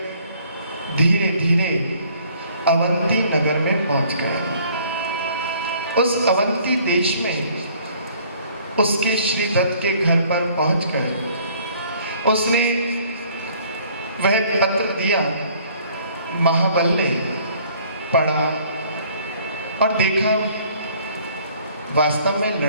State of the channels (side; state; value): both; inverted; correlation -0.58